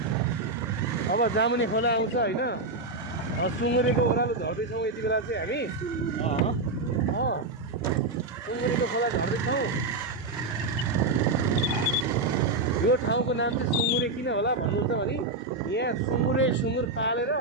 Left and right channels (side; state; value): left; quieter; 3.3 dB